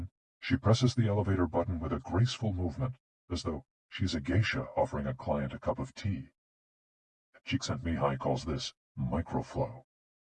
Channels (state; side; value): identical; both; correlation 1.00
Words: she presses the elevator button with a graceful movement, as though she's a geisha offering a client a cup of tea. Csikszentmihalyi calls this microflow.